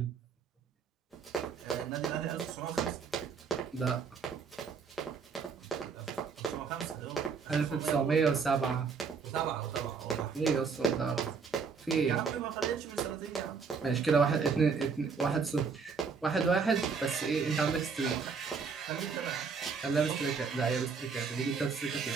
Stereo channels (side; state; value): left; quieter; 5.5 dB